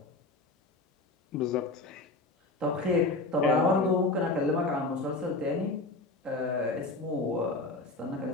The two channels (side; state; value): right; quieter; 3.2 dB